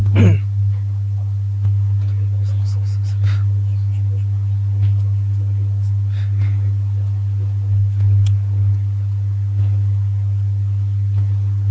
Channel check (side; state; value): both; identical; correlation 1.00